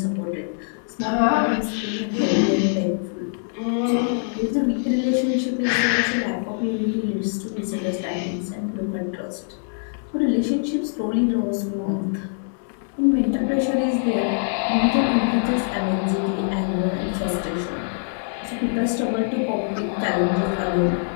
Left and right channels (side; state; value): right; silent; 63 dB below the other